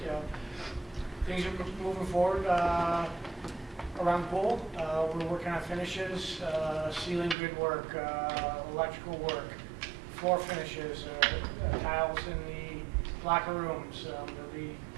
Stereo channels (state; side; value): drops out; left; at 7.4 s